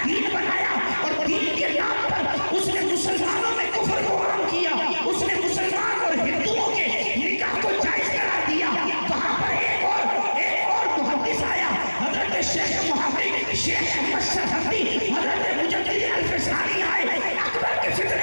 دین بنایا اور دین کے نام پر اس نے مسلمانوں میں کفر کو عام کیا، اس نے مسلمان اور ہندوؤں کے نکاح کو جائز قرار دیا۔ وہاں پر ایک اور محدث آیا، حضرت شیخ محقق شیخ احمد سرحدی، حضرت مجدد الفسانی آئے، اکبر کے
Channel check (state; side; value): inverted; both; correlation -1.00